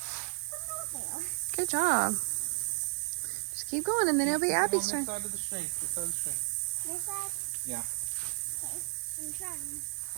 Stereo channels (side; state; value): left; silent; digital silence